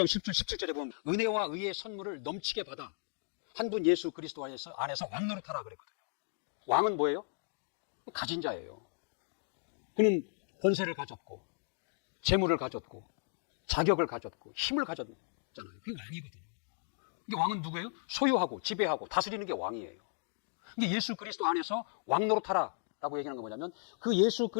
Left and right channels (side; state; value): right; silent; 54 dB below the other